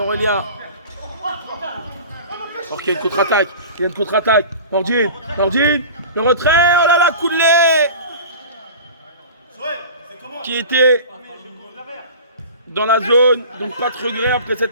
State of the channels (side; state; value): both; inverted; correlation -0.37